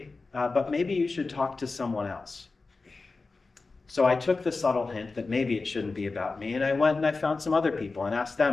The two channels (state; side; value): quieter; right; 3.9 dB